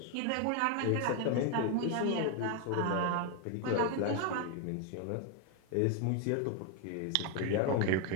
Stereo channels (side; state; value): both; different; correlation 0.01